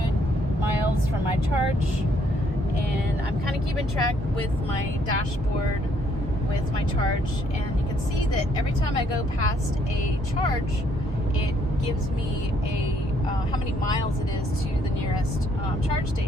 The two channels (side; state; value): both; normal; correlation 0.68